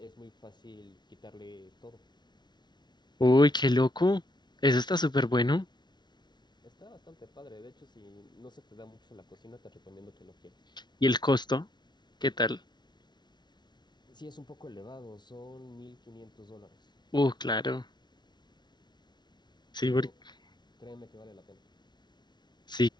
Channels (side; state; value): right; late; 0.21 ms